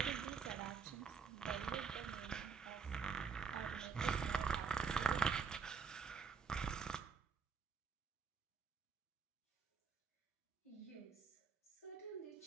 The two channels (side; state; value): left; quieter; 5.9 dB